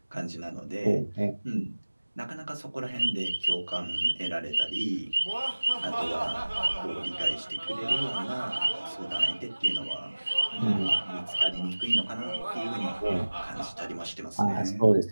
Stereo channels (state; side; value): inverted; both; correlation -1.00